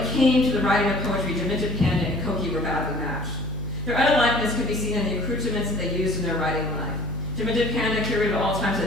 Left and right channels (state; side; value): noise; left; hum, 12 dB below the sound